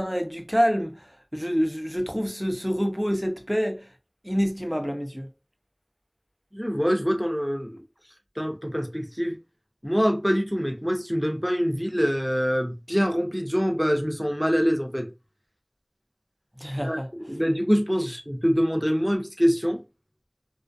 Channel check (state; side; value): identical; both; correlation 1.00